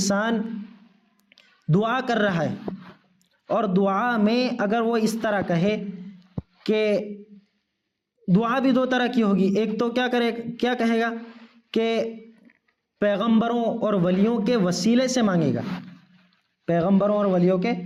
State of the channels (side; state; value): both; identical; correlation 1.00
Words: دعا کر رہا ہے اور دعا میں اگر وہ اس طرح کہے کہ دعا بھی دو طرح کی ہوگی، ایک تو کیا کہے گا کہ پیغمبروں اور ولیوں کے وسیلے سے مانگے گا، پیغمبروں اور ولیوں کے